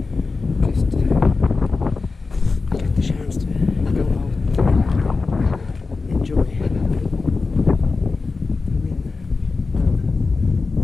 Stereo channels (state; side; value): quieter; right; 4.1 dB